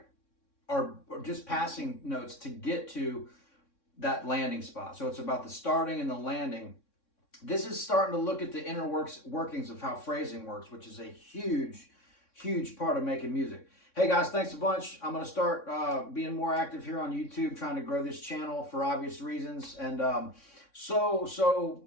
are just passing notes to get to that landing spot. So it's about the starting and the landing. This is starting to look at the inner workings of how phrasing works, which is a huge part of making music. Hey guys, thanks a bunch. I'm going to start being more active here on YouTube, trying to grow this channel for obvious reasons. And so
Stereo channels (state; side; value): late; right; 3.6 ms